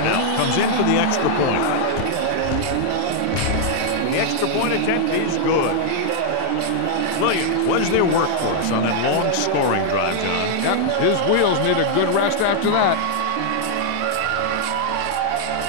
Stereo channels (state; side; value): different; both; correlation 0.00